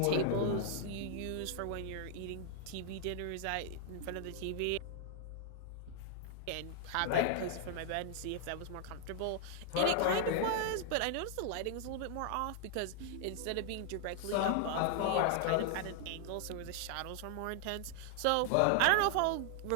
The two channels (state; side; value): different; both; correlation 0.00